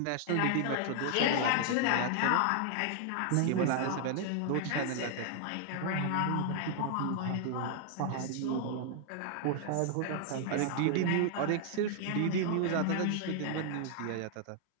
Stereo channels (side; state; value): both; different; correlation 0.00